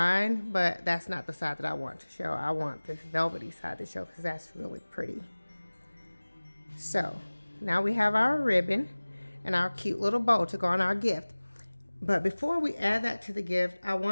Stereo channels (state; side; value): inverted; both; correlation -1.00